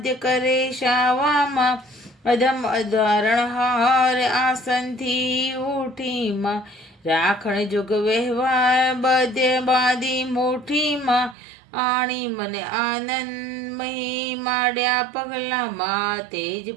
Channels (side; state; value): left; drops out; at 11.4 s